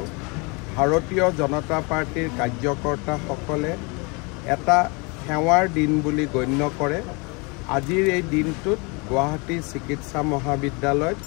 ভাৰতীয় জনতা পাৰ্টিৰ কাৰ্যকৰ্তাসকলে এটা সেৱাৰ দিন বুলি গণ্য কৰে। আজিৰ এই দিনটোত গুৱাহাটী চিকিৎসা মহাবিদ্যালয়ত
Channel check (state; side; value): quieter; right; 30.1 dB